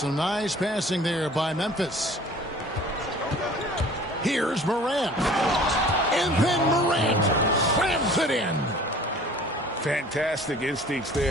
nice passing there by Memphis. Here's Morant. And then Morant slams it in. Fantastic instincts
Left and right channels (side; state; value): both; normal; correlation 0.48